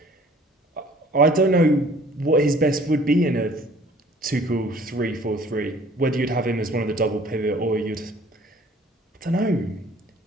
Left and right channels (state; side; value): normal; both; correlation 0.53